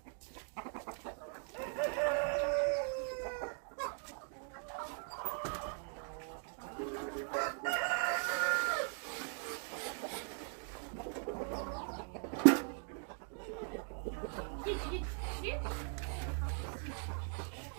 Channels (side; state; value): left; silent; 51 dB below the other